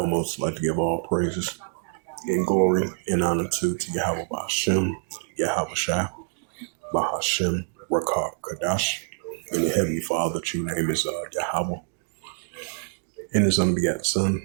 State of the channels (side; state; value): left; silent; digital silence